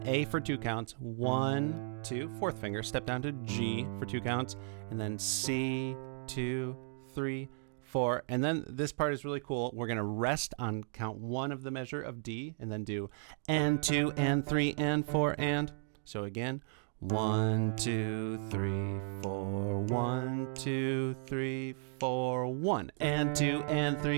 A for 2 counts, 1, 2, 4th finger, step down to G for 2 counts, and then C, 2, 3, 4, and then this part is really cool. We're going to rest on count 1 of the measure of D and then do and 2 and 3 and 4 and. So again, 1, 2, 3, 4, 1, 2, 3, 4, 1, and 2, and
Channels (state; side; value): silent; left; digital silence